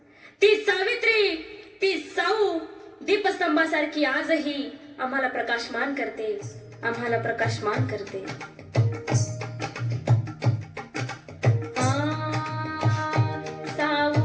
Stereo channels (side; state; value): both; identical; correlation 1.00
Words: ती सावित्री, ती साऊ दीपस्तंभासारखी आजही आम्हाला प्रकाशमान करते, आम्हाला प्रकाशमान करते.